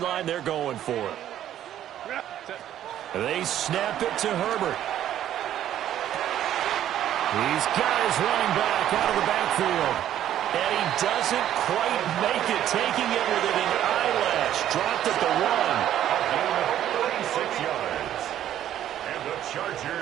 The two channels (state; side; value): quieter; left; 11.5 dB